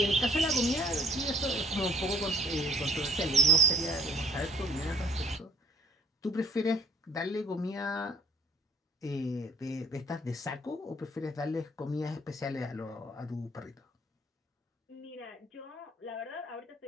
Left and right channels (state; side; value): normal; both; correlation 0.57